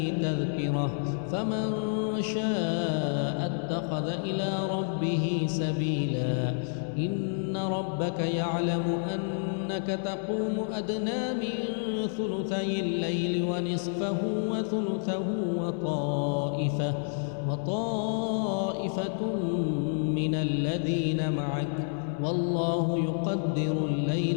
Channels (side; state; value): right; silent; 58 dB below the other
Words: تذكرة فمن شاء اتخذ إلى ربه سبيلا إن ربك يعلم أنك تقوم أدنى من ثلثي الليل ونصفه وثلثه وطائفة من الذين معك والله يقدر